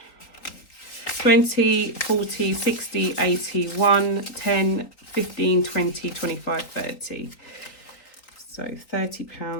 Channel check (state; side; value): late; right; 4.0 ms